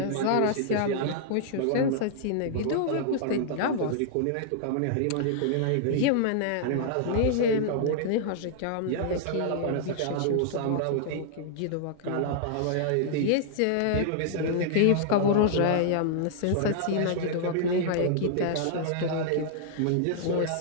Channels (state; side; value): different; both; correlation -0.01